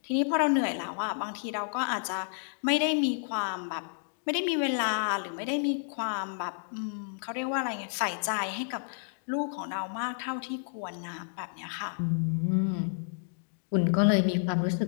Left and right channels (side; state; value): right; silent; digital silence